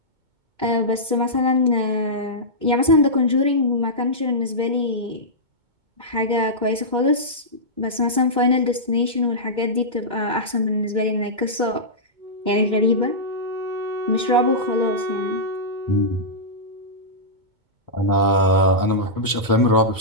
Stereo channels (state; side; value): late; left; 2.2 ms